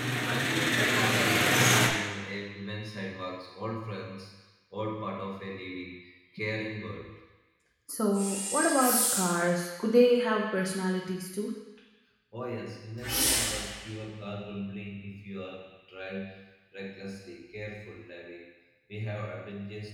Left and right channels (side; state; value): both; identical; correlation 1.00